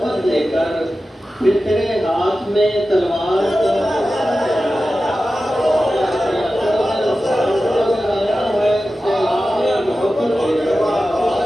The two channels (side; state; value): both; normal; correlation 0.94